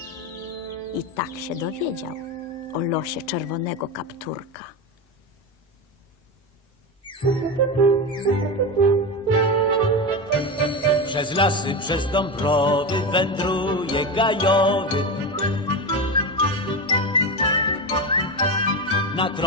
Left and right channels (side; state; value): both; normal; correlation 0.18